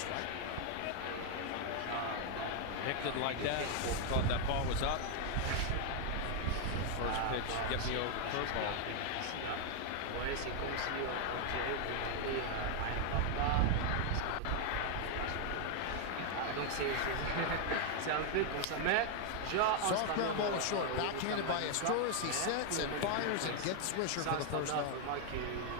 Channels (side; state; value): both; different; correlation 0.00